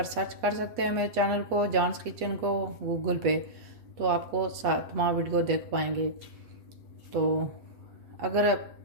सर्च कर सकते हैं मेरे चैनल को, जानस किचन को, गूगल पे, तो आपको तमाम वीडियो देख पाएंगे। तो अगर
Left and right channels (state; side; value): late; left; 8.3 ms